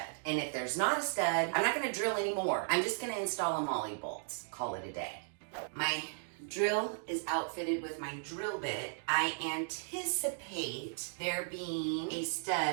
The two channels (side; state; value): left; silent; digital silence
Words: And if there's not a stud, I'm not gonna drill anymore. I'm just gonna install a molly bolt. Call it a day. My drill is outfitted with my drill bit. I anticipate there being a